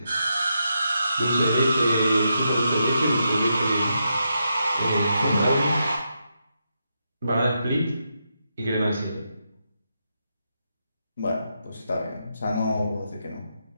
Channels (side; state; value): both; inverted; correlation -0.83